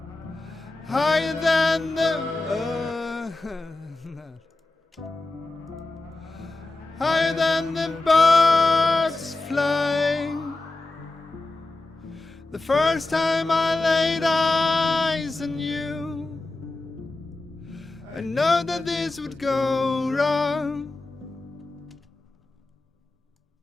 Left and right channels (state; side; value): quieter; right; 3.1 dB